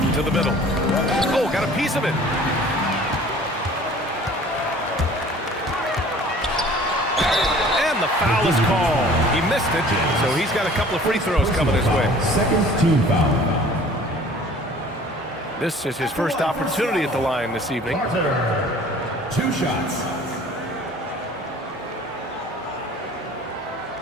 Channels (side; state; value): both; normal; correlation 0.49